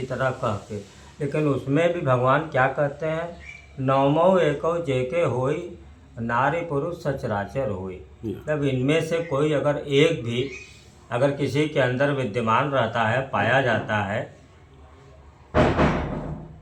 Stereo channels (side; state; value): both; identical; correlation 1.00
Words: तरह कह के, लेकिन उसमें भी भगवान क्या कहते हैं, नवमो एको जेके होई, नारी पुरुष सचराचर होई। जब इनमें से कोई अगर एक भी अगर किसी के अंदर विद्यमान रहता है, पाया जाता है,